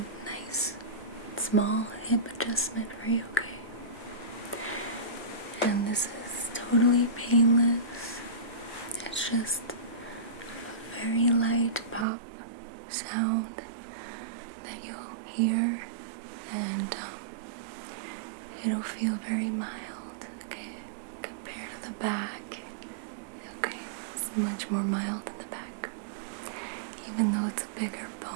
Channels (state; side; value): drops out; left; at 12.1 s